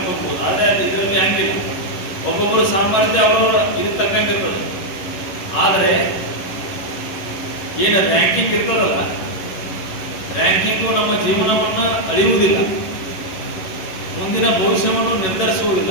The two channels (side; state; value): right; late; 11 ms